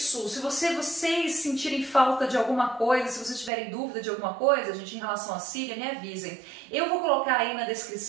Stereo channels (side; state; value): left; drops out; at 3.5 s